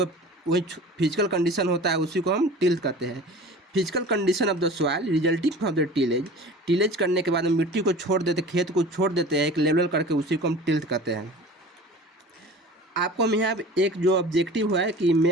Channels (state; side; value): normal; both; correlation 0.40